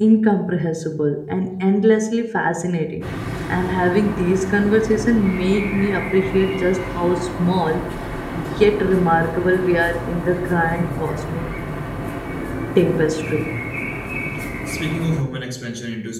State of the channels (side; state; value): both; identical; correlation 1.00